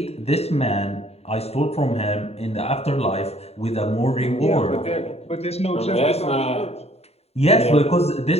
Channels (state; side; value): late; right; 0.30 ms